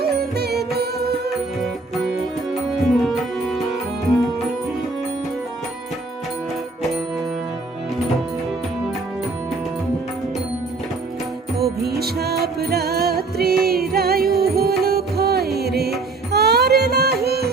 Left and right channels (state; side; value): quieter; left; 3.7 dB